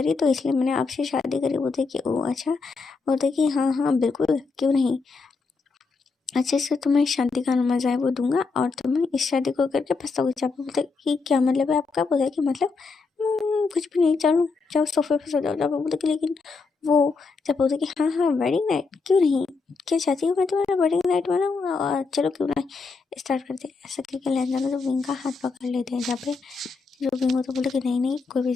तो इसलिए मैंने आपसे शादी करी। बोलते कि ओ अच्छा। बोलते कि हाँ हाँ बिल्कुल क्यों नहीं। अच्छे से तुम्हें शादी का मजा है वो दूंगा और तुम्हें इस शादी को करके पछताओगे। चापा बोलता है कि क्या मतलब है आपका? बोला कि मतलब कुछ भी नहीं, चलो जाओ सोफे पे सो जाओ। चापा बोलता कि लेकिन वो, चापा बोलता कि हाँ हाँ वेडिंग नाइट क्यों नहीं, क्या चाहती हो मैं तुम्हारा वेडिंग नाइट बनाऊँ, और चलो क्यों ना स्टार्ट करते हैं। ऐसा करके लहंगा तो विंग का हाथ पकड़ लेते हैं। जहाँ पे जो विंग होता बोलता कि नहीं नहीं कोई भी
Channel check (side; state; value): right; quieter; 4.4 dB